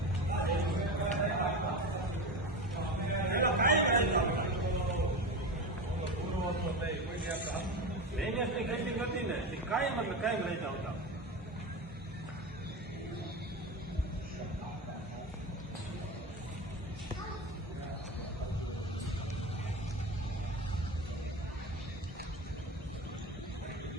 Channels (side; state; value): both; normal; correlation 0.23